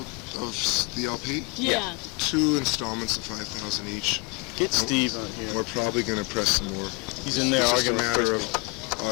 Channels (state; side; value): quieter; right; 28.7 dB